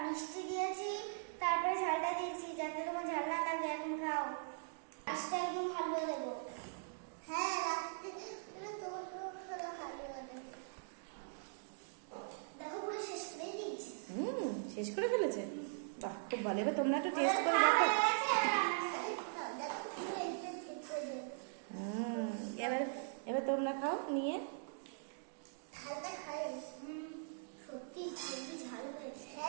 মিষ্টি দিয়েছি তারপরে ঝালটা দিয়েছি, যাতে তোমার ঝাল না লাগে। এখন খাও, আজকে একদম হালুয়া দেবো। হ্যাঁ রাখতে তোমার হালুয়া দেবো। দেখো পুরো শেষ করে দিয়েছি। শেষ করে ফেলেছে, বাহ খুব ভালো। এবার তোমরা একটু টেস্ট করে দেখো। এবার এবার তোমরা খাও নিয়ে। ঝালটা খাই, সত্যি খুবই ঝাল হয়েছে।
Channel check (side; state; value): left; silent; digital silence